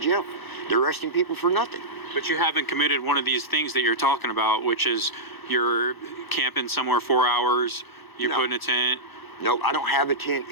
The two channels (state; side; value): late; right; 1.1 ms